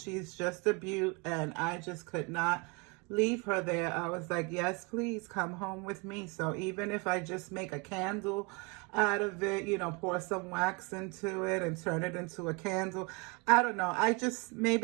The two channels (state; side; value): quieter; left; 29.1 dB